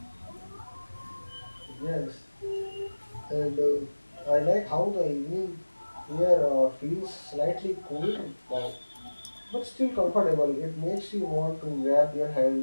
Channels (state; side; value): inverted; both; correlation -1.00